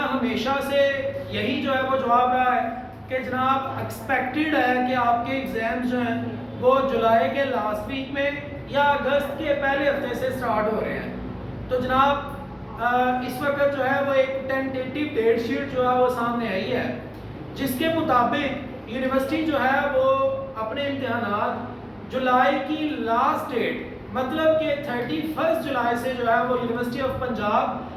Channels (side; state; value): both; identical; correlation 1.00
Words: ہمیشہ سے یہی جو ہے وہ جواب رہا ہے کہ جناب ایکسپیکٹڈ ہے کہ آپ کے ایگزامز جو ہیں وہ جولائی کے لاسٹ ویک میں یا اگست کے پہلے ہفتے سے سٹارٹ ہو رہے ہیں۔ تو جناب اس وقت جو ہے وہ ایک ٹینٹیٹیو ڈیٹ شیٹ جو ہے وہ سامنے آئی ہے، جس کے مطابق یونیورسٹی جو ہے وہ اپنے امتحانات جولائی کی لاسٹ ڈیٹ مطلب کہ 31 جولائی سے جو ہے وہ یونیورسٹی آف پنجاب